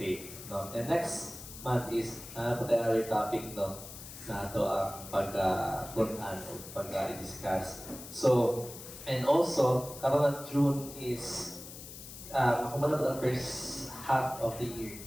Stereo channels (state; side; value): noise; left; hiss, 13 dB below the sound